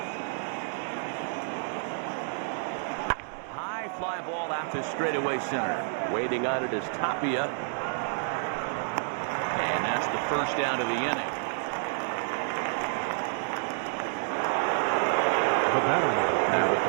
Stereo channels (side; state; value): left; silent; digital silence